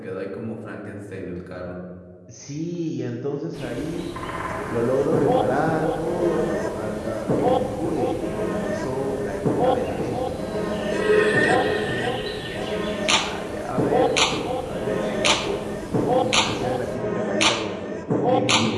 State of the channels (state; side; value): identical; both; correlation 1.00